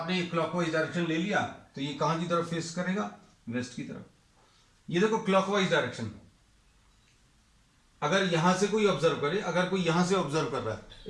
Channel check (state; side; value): identical; both; correlation 1.00